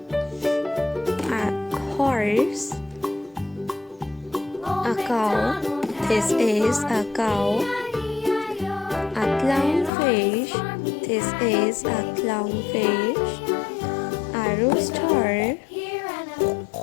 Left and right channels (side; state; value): right; drops out; at 9.9 s